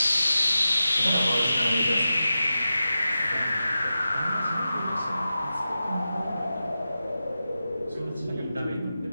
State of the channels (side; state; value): both; inverted; correlation -0.92